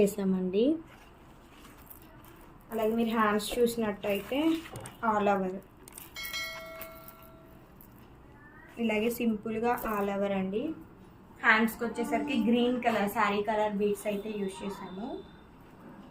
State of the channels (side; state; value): both; identical; correlation 1.00